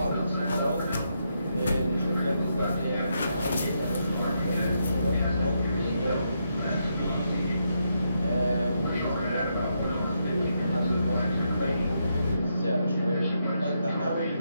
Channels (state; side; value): inverted; both; correlation -0.80